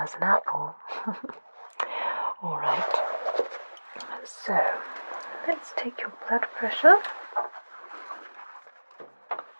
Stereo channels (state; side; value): inverted; both; correlation -1.00